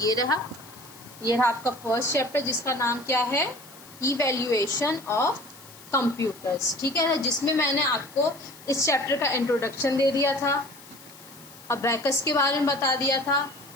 ये रहा आपका फर्स्ट चैप्टर, जिसका नाम क्या है? Evaluation of computers. ठीक है, जिसमें मैंने आपको इस चैप्टर का इंट्रोडक्शन दे दिया था, अबैकस के बारे में बता दिया था,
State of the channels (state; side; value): noise; left; hiss, 20 dB below the sound